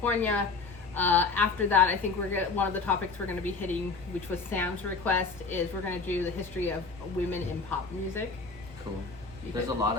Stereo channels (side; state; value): right; quieter; 4.3 dB